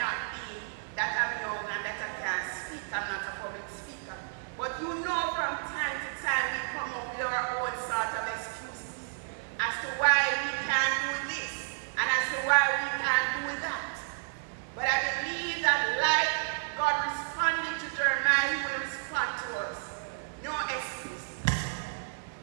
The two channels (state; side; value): silent; left; digital silence